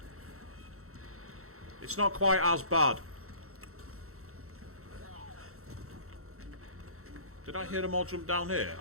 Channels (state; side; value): late; left; 0.63 ms